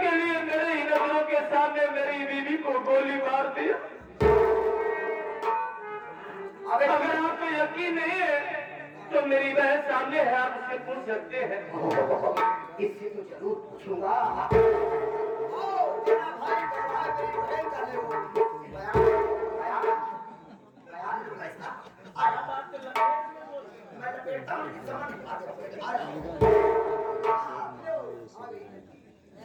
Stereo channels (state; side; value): identical; both; correlation 1.00